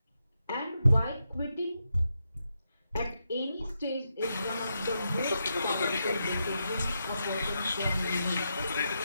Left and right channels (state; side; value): inverted; both; correlation -0.84